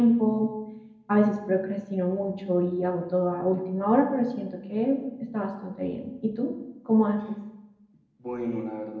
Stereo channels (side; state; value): both; identical; correlation 1.00